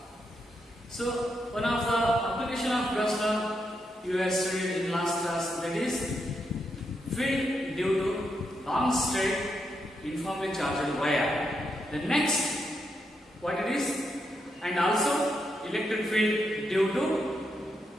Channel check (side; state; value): both; normal; correlation 0.82